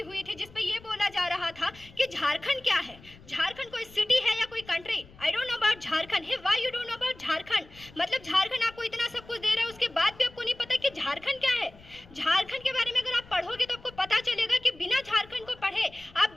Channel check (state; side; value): noise; left; rumble, 23 dB below the sound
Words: हुई थी, जिसपे ये बोला जा रहा था कि झारखंड क्या है, झारखंड कोई सिटी है या कोई country. I don't know about Jharkhand. Hey why you don't know about Jharkhand? मतलब झारखंड आपको इतना सब कुछ दे रहा है, उसके बाद भी आपको नहीं पता कि झारखंड क्या है। झारखंड के बारे में अगर आप पढ़ोगे तो आपको पता चलेगा कि बिना झारखंड को पढ़े